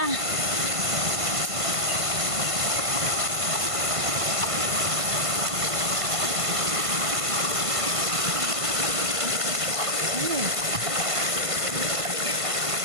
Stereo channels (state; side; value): late; left; 1.5 ms